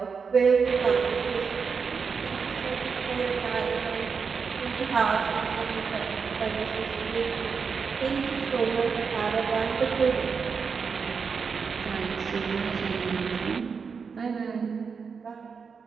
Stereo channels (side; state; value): left; quieter; 5.6 dB